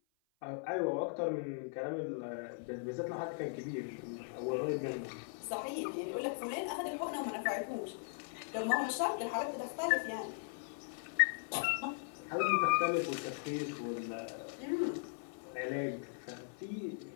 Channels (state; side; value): silent; right; 52 dB below the other